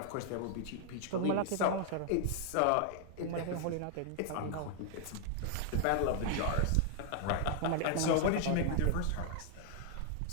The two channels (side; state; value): both; different; correlation 0.00